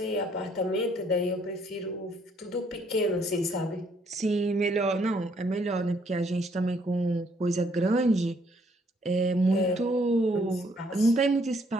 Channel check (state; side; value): normal; both; correlation 0.67